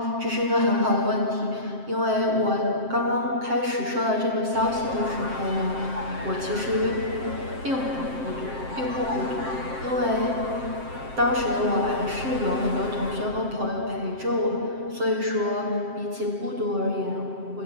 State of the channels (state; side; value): late; left; 7.6 ms